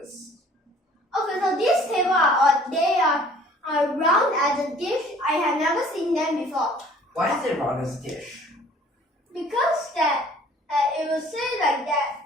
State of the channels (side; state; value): both; normal; correlation 0.53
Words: Okay, so these tables they are round as a dish. I have never seen them before. Why is it round as a dish? Because that it will say like that,